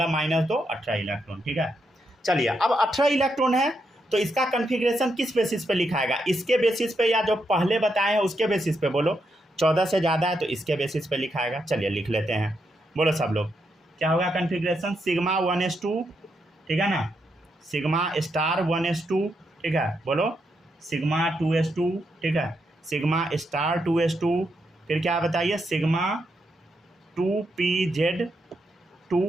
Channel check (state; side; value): normal; both; correlation 0.81